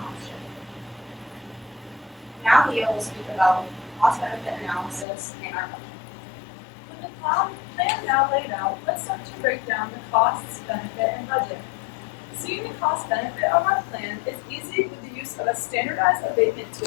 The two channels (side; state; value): right; drops out; at 5.1 s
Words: option. Now Leo will speak about cost-benefit analysis and our budget. With the plan now laid out, let's start to break down the costs, benefit, and budget. Seeing the cost-benefit of our plan is easy with the use of a standardized abatement